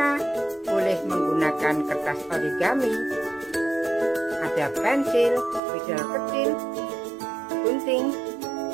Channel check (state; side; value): drops out; left; at 5.6 s